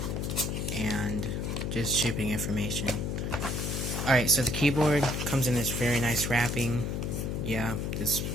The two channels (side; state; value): left; noise; hum, 2 dB below the sound